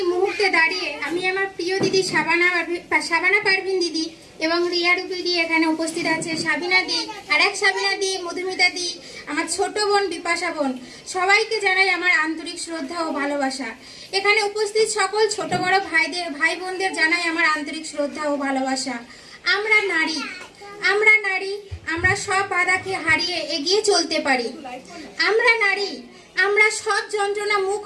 মুহূর্তে দাঁড়িয়ে আমি আমার প্রিয় দিদি শাবানা পারভিন দিদি এবং রিয়া রূপী দি এখানে উপস্থিত আছে, সাবিনা দি, আর এক সাবিনা দি, মধুমিতা দি, আমার ছোট বোন বিপাশা বোন, সবাইকে জানাই আমার আন্তরিক শ্রদ্ধা ও ভালোবাসা। এখানে উপস্থিত সকল ছোট বড় ভাই বোনদের জানাই আমার আন্তরিক শ্রদ্ধা ও ভালোবাসা। আমরা নারী, আমরা সব বাধাকে হারিয়ে এগিয়ে চলতে পারি। আমরা নারী, আমরা সব যন্ত্রণা মুখ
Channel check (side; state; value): both; identical; correlation 1.00